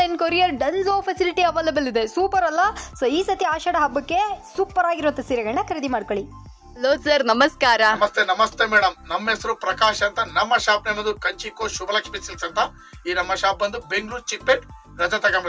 courier Dunzo facility available ಇದೆ. ಸೂಪರ್ ಅಲ್ಲ? ಸೊ ಈ ಸತಿ ಆಷಾಢ ಹಬ್ಬಕ್ಕೆ ಸೂಪರ್ ಆಗಿರುತ್ತೆ ಸೀರೆಗಳನ್ನ ಖರೀದಿ ಮಾಡ್ಕೊಳ್ಳಿ. ಹಲೋ ಸರ್, ನಮಸ್ಕಾರ. ನಮಸ್ತೆ ಮೇಡಮ್. ನಮ್ಮ ಹೆಸರು ಪ್ರಕಾಶ್ ಅಂತ. ನಮ್ಮ ಶಾಪ್ ನೇಮದು ಕಂಚಿಕೋ ಶುಭಲಕ್ಷ್ಮಿ ಸಿಲ್ಕ್ಸ್ ಅಂತ. ಈ ನಮ್ಮ ಶಾಪ್ ಬಂದು ಬೆಂಗಳೂರು ಚಿಕ್ಕಪೇಟ್ ರಜತ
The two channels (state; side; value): identical; both; correlation 1.00